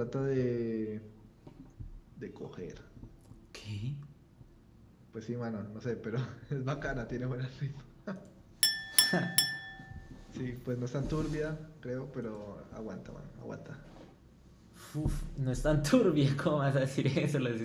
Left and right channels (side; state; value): both; identical; correlation 1.00